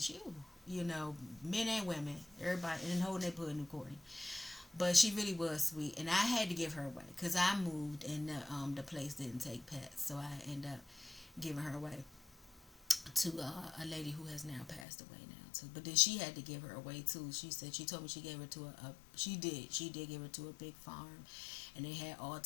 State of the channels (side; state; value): right; drops out; at 14.9 s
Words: you?" Men and women, everybody in the whole neighborhood knew Courtney. But she really was sweet, and I had to give her away because I moved and the place didn't take pets, so I ended up giving her away to a lady who has now passed away now too. But then she had to give her away too. She told me she gave her to she did give her to a big farm, and they had all